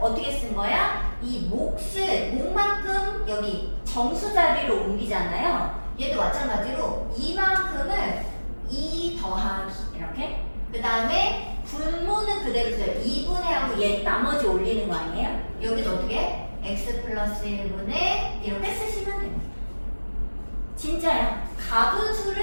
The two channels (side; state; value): both; inverted; correlation -1.00